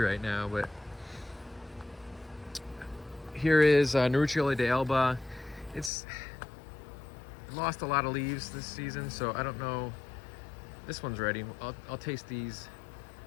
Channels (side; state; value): right; drops out; at 5.9 s